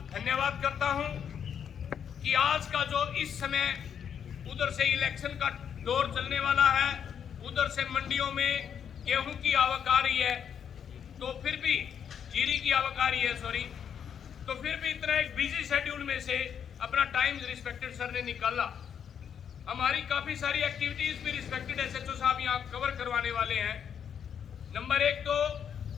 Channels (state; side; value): quieter; right; 8.1 dB